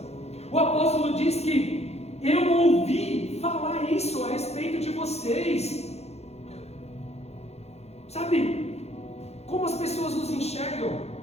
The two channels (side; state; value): right; late; 0.31 ms